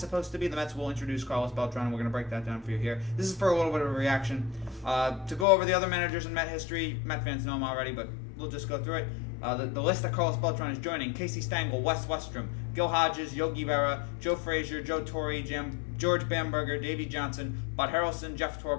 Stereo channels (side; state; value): right; drops out; at 5.5 s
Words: supposed to be. The Mets will introduce Carlos Beltran, and we're going to break that down for you here. This is for a little bit of a reaction. To go over the other managers in Met history, Met fans know them already, but we'll just go through it. The list that Carlos Beltran is joining: Casey Stengel, Wes Westrom, Gil Hodges, Yogi Berra, Joe Frazier, Joe Torre, George Bamberger, Davey Johnson, Bud Harrelson, Jeff